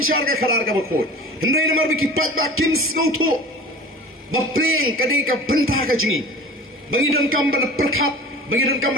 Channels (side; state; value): both; normal; correlation 0.39